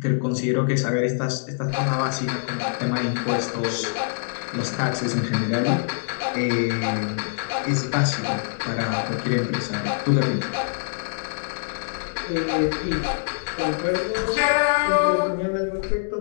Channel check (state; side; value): silent; right; digital silence